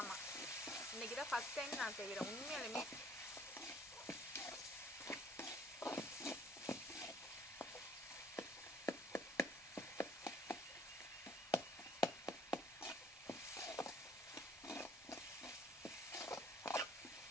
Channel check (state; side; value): normal; both; correlation 0.58